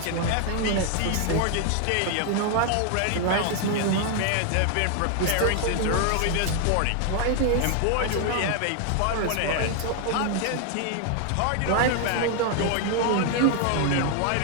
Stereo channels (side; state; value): both; different; correlation 0.00